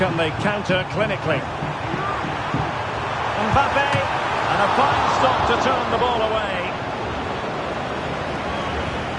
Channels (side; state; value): both; identical; correlation 1.00